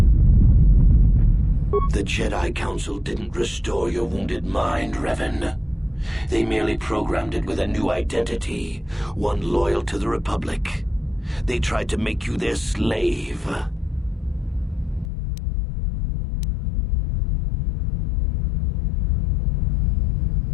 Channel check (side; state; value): right; drops out; at 15.1 s